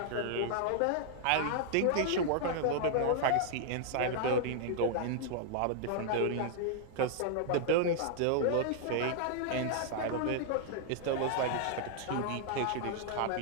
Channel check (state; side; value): different; both; correlation -0.01